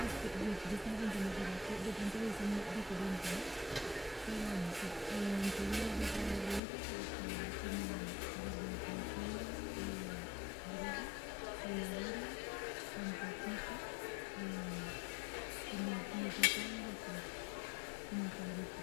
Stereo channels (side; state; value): right; drops out; at 6.6 s